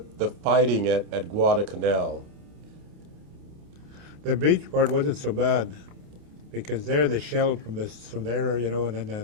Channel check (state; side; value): late; left; 28 ms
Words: fighting at Guadalcanal? The beach part wasn't so bad, because there they shelled from there, and